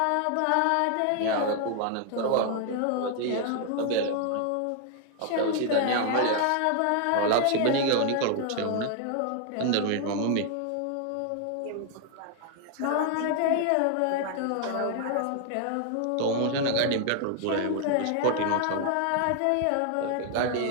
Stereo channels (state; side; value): different; both; correlation 0.00